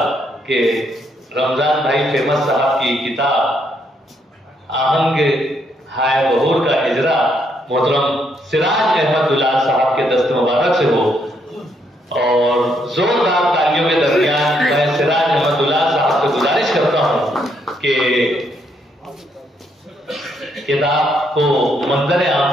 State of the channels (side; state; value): both; normal; correlation 0.74